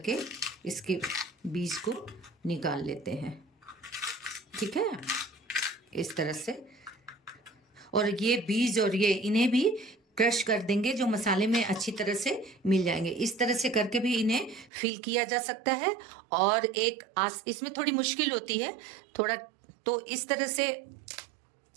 इसके बीज को निकाल लेते हैं। ठीक है, इस तरह से। और ये बीज और ये इन्हें भी क्रश कर देंगे, जो मसाले में अच्छी तरह से मिल जाएंगे। इस तरह से करके भी इन्हें फिल किया जा सकता है। और इसमें थोड़ी मुश्किल होती है थोड़ा, तो इस तरह से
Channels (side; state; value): left; drops out; at 14.7 s